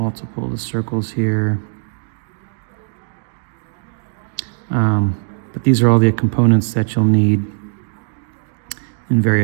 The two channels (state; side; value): silent; left; digital silence